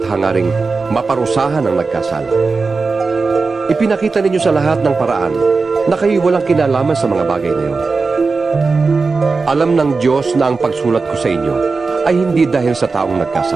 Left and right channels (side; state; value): left; quieter; 4.2 dB